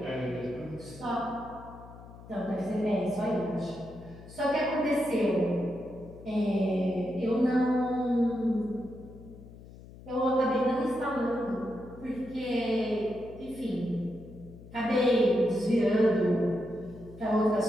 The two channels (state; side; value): noise; left; hum, 18 dB below the sound